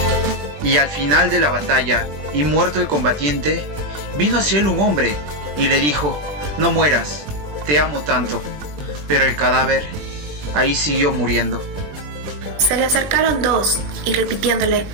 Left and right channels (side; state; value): left; late; 20 ms